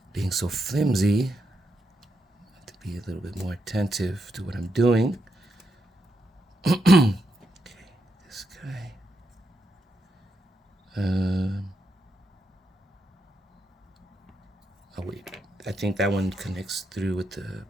Being so flimsy, I have to be a little bit more attentive to what I'm doing. Okay, this guy. Oh wait, I think that one connects through with the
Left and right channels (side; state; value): both; normal; correlation 0.82